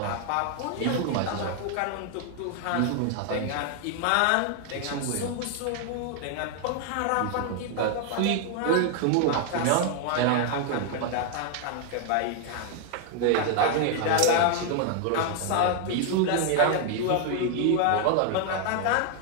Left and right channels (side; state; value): both; different; correlation 0.00